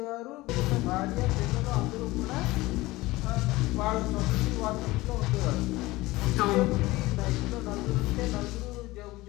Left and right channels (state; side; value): quieter; right; 19.6 dB